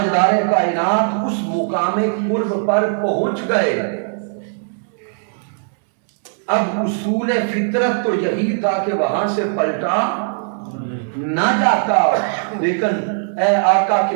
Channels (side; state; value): left; silent; 66 dB below the other